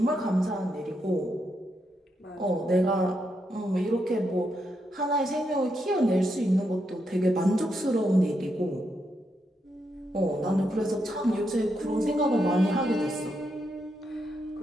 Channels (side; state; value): both; normal; correlation 0.81